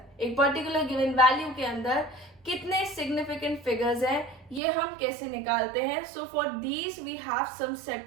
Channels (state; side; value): drops out; left; at 4.6 s